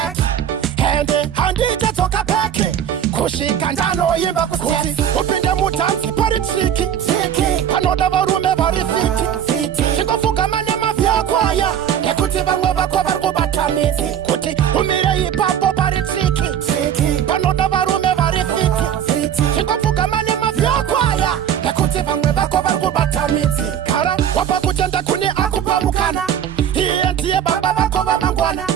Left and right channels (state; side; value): quieter; left; 9.5 dB